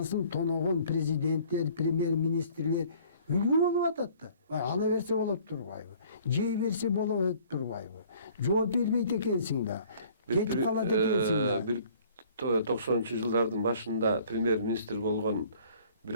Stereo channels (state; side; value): inverted; both; correlation -0.55